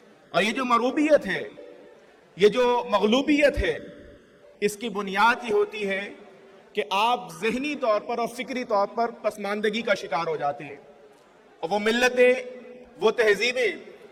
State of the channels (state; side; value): identical; both; correlation 1.00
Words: اور یہ جو مروبیت ہے، یہ جو مغلوبیت ہے، اس کی بنیاد یہ ہوتی ہے کہ آپ ذہنی طور پر اور فکری طور پر پسماندگی کا شکار ہو جاتے ہیں۔ اور وہ ملتیں، وہ تہذیبیں